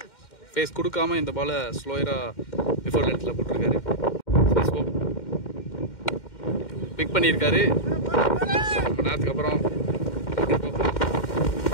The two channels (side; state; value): right; late; 2.1 ms